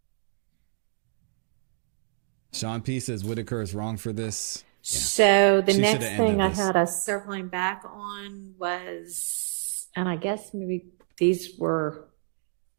Sean P says Whitaker is wrong for this. Yeah. So the She next shoulda thing ended I this. had us circling back on was, and I guess maybe these were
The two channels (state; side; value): silent; left; 60 dB below the other